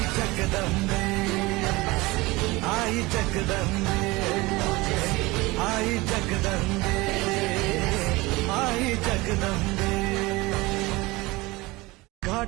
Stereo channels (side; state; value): left; quieter; 21.9 dB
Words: जगदंबे आई जगदंबे आई जगदंबे आई जगदंबे